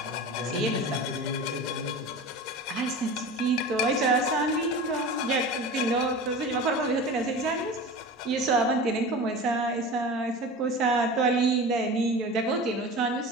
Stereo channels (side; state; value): both; normal; correlation 0.33